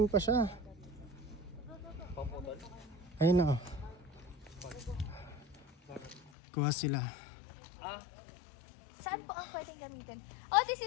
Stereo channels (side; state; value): right; drops out; at 6.3 s